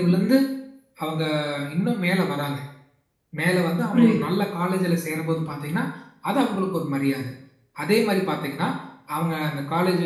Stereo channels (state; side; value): identical; both; correlation 1.00